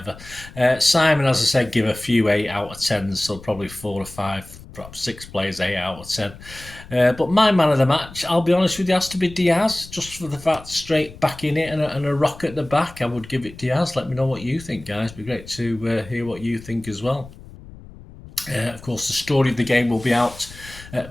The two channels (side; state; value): left; noise; rumble, 18 dB below the sound